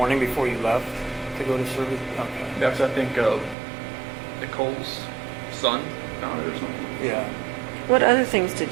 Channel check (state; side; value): drops out; left; at 3.6 s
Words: before you left to go to service? Okay. That's, I think, Nicole's son found it or something. Yeah. What other things